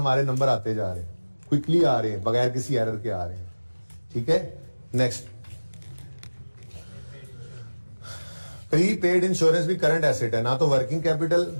नंबर आते जा रहे हैं, क्विकली आ रहे हैं, बगैर किसी एरर के आ रहे हैं, ठीक है। नेक्स्ट, प्री पेड इंश्योरेंस भी करंट एसेट है, ना तो वर्किंग कैपिटल,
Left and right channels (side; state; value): both; inverted; correlation -1.00